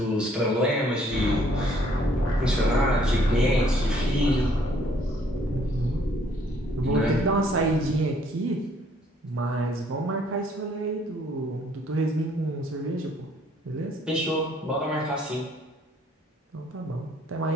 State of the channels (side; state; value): both; normal; correlation 0.63